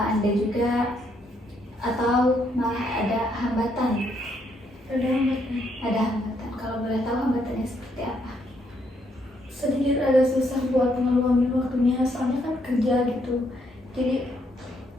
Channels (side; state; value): both; normal; correlation 0.73